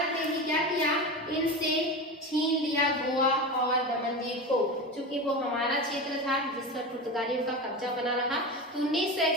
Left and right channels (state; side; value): normal; both; correlation 0.24